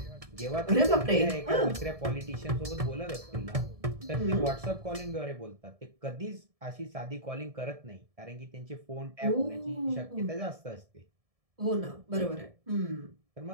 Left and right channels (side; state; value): left; late; 1.7 ms